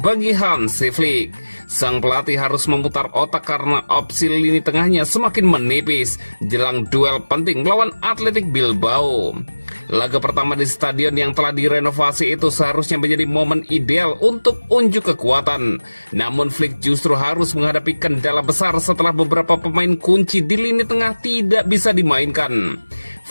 Hansi Flick. Sang pelatih harus memutar otak karena opsi lini tengahnya semakin menipis jelang duel penting melawan Athletic Bilbao. Laga pertama di stadion yang telah direnovasi itu seharusnya menjadi momen ideal untuk unjuk kekuatan. Namun Flick justru harus menghadapi kendala besar setelah beberapa pemain kunci di lini tengah tidak bisa dimainkan.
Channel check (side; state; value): both; inverted; correlation -1.00